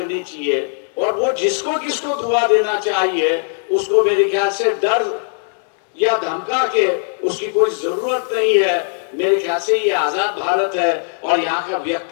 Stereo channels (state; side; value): silent; right; digital silence